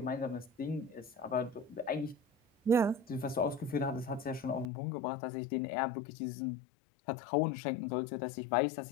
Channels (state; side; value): drops out; right; at 4.7 s